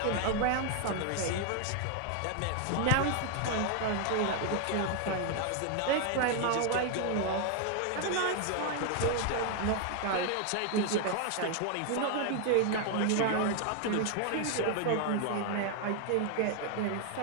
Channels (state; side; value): different; both; correlation 0.00